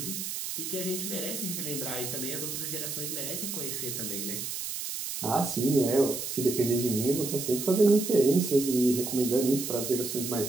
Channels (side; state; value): right; noise; hiss, 5 dB below the sound